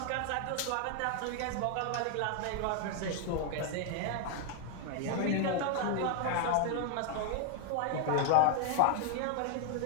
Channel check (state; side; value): different; both; correlation 0.00